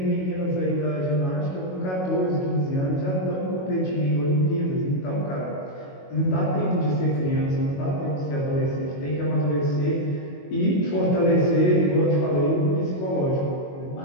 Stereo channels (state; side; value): late; right; 22 ms